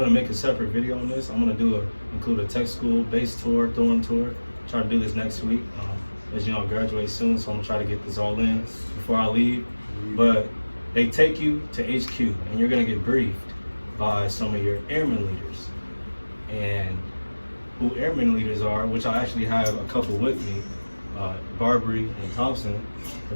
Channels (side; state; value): both; inverted; correlation -1.00